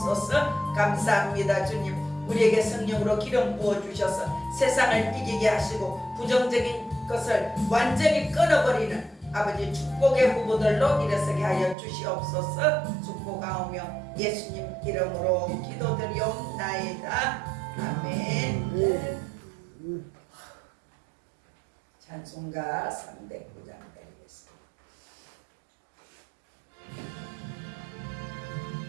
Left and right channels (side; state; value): left; drops out; at 11.8 s